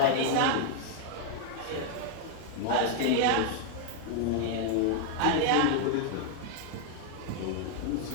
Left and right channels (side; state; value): both; different; correlation 0.00